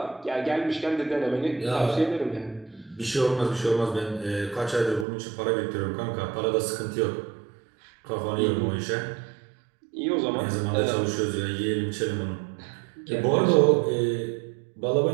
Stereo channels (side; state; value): left; drops out; at 5.1 s